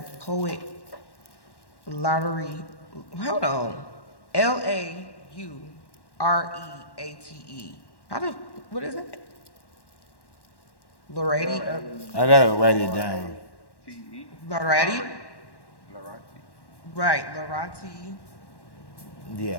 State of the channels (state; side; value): late; right; 1.1 ms